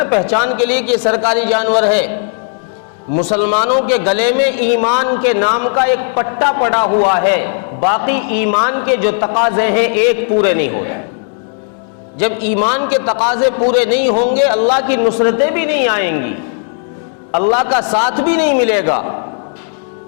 پہچان کے لیے کہ یہ سرکاری جانور ہے، مسلمانوں کے گلے میں ایمان کے نام کا ایک پٹا پڑا ہوا ہے، باقی ایمان کے جو تقاضے ہیں ایک پورے نہیں ہوتے۔ جب ایمان کے تقاضے پورے نہیں ہوں گے، اللہ کی نصرتیں بھی نہیں آئیں گی، اللہ کا ساتھ بھی نہیں ملے گا۔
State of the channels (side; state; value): right; silent; 61 dB below the other